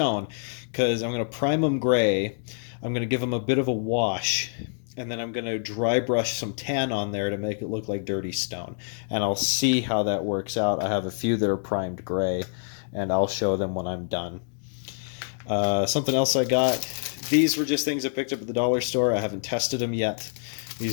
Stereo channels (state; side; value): silent; right; digital silence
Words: because I'm going to prime them gray. I'm going to give them a bit of a wash, and then I'm going to dry brush some tan on there to make it look like dirty stone. And I'll see how that works out. I have a few that are primed gray, and I'll show them when I'm done. Something else I got. These were just things I picked up at the dollar store. I haven't tested them yet.